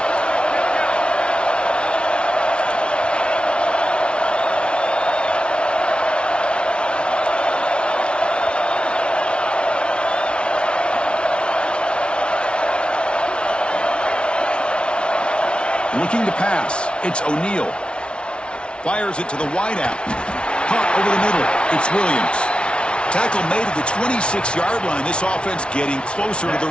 Looking to pass. It's O'Neal. Fires it to the wideout. Caught over the middle. It's Williams. Tackle made at the 26-yard line. This offense getting closer to the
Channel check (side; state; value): right; late; 0.058 ms